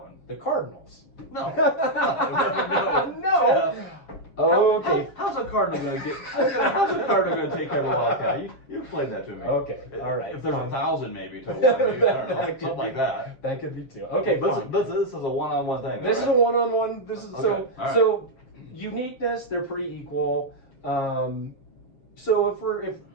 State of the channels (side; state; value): right; late; 7.5 ms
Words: one. the Cardinals. No. No. Okay. How's a cardinal going to get? How's a cardinal going to take care of a wildcat? You played that to me. Okay. All right. If there's fine. 1,000, maybe to 1, maybe, I don't know, That could something like be- that. That could be 2. Okay. Fine. This is a one-on-one thing. This is a one-on-one. This is Okay, all right. so uniqueness. They're pretty equal. So if